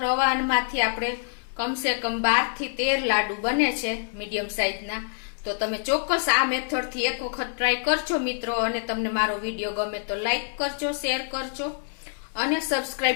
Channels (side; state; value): right; silent; 61 dB below the other